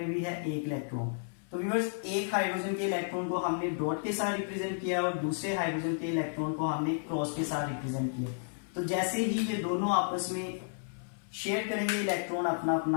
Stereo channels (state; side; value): silent; right; 56 dB below the other